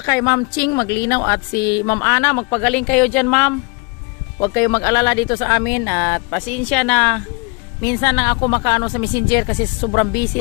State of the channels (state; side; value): quieter; right; 31.2 dB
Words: Ma'am Ching Maglinaw at si Ma'am Ana. Magpagaling kayo dyan, ma'am. Huwag kayo mag-alala dito sa amin. At pasensya na minsan lang ako makaano sa messenger kasi sobrang busy